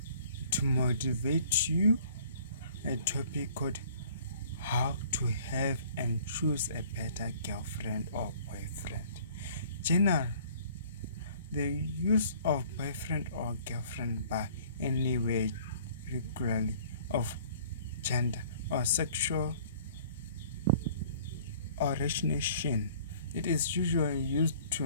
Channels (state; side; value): inverted; both; correlation -0.53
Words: to motivate you a topic called how to have and choose a better girlfriend or boyfriend. General, the use of boyfriend or girlfriend by anywhere regularly of gender or sexual origination. It is usually used to